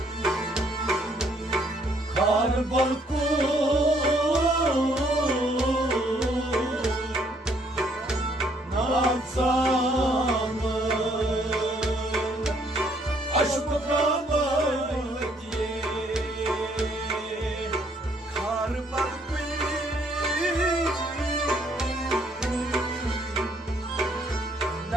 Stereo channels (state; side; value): normal; both; correlation 0.67